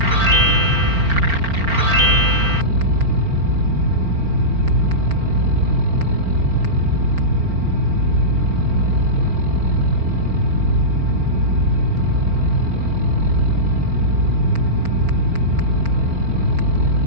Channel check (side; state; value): left; late; 4.4 ms